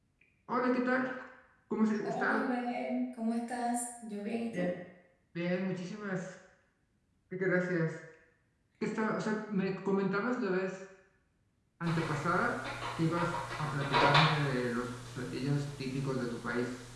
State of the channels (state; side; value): identical; both; correlation 1.00